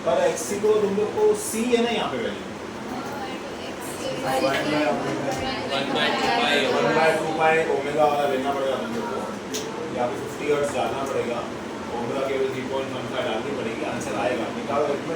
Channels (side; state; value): both; identical; correlation 1.00